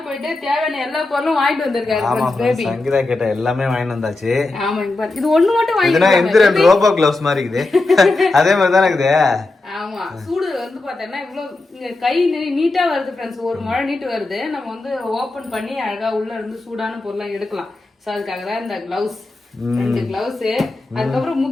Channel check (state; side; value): quieter; right; 3.1 dB